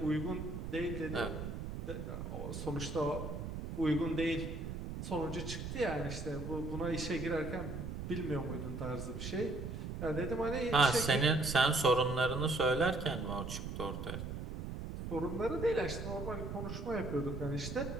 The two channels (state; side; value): noise; right; rumble, 6 dB below the sound